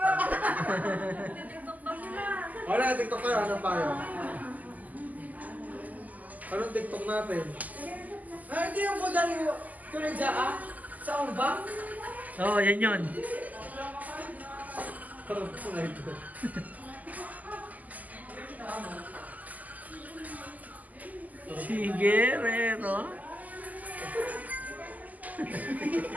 Wala, TikTok tayo. Anong payo? Anong TikTok natin? Hindi yung budang tulad sa umbang. Oo, yan yun. Parang sunay ko. Sige, Rero.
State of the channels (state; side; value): late; left; 0.079 ms